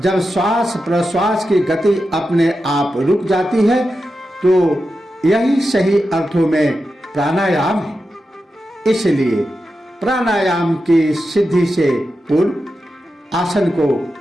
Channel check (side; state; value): both; normal; correlation 0.90